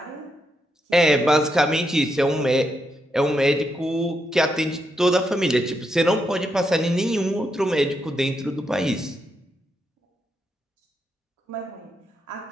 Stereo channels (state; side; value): normal; both; correlation 0.82